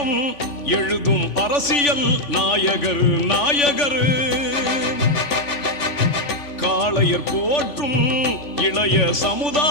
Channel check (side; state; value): right; late; 3.4 ms